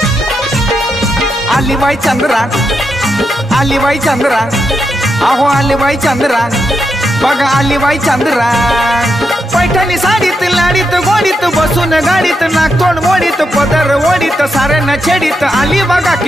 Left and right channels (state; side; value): normal; both; correlation 0.84